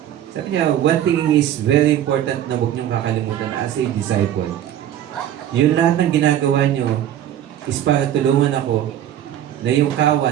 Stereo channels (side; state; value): left; quieter; 11.3 dB